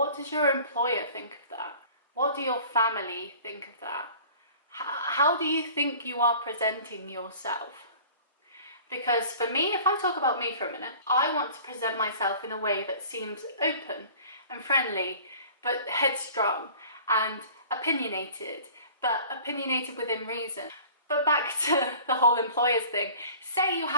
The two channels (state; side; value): inverted; both; correlation -0.46